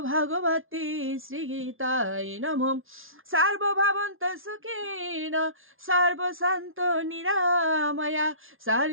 ভগবতে শ্রীগীতায় নমঃ। সর্বভবন্ত সুখেন সর্বসন্ত নিরাময়া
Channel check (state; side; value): late; left; 0.59 ms